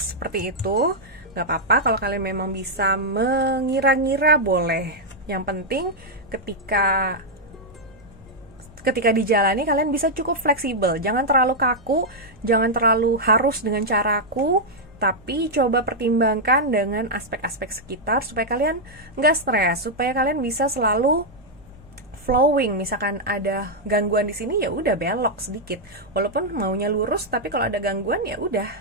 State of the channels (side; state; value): right; noise; hum, 27 dB below the sound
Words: seperti itu. Gak apa-apa kalau kalian memang bisa mengira-ngira, boleh. Yang penting ketika dijalani kalian bisa cukup fleksibel, jangan terlalu kaku, jangan terlalu harus dengan caraku, tapi coba pertimbangkan dengan aspek-aspek sekitar supaya kalian nggak stres, supaya kalian bisa selalu flowing. Misalkan ada gangguan di sini, ya udah belok sedikit, walaupun maunya lurus, tapi kalau ada gangguan ya udah